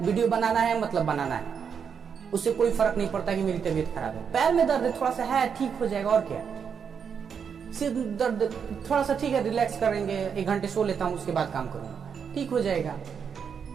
वीडियो बनाना है, मतलब बनाना है, उससे कोई फर्क नहीं पड़ता कि मेरी तबीयत खराब है, पैर में दर्द थोड़ा सा है, ठीक हो जाएगा, और क्या। सिर दर्द थोड़ा सा ठीक है, रिलैक्स करेंगे, 1 घंटे सो लेता हूँ, उसके बाद काम करूंगा, ठीक हो जाएगा।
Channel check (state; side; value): quieter; left; 6.9 dB